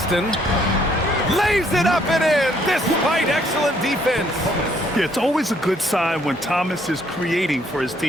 Lays it up and in despite excellent defense. Yeah, it's always a good sign when Thomas is creating for his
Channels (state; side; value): normal; both; correlation 0.67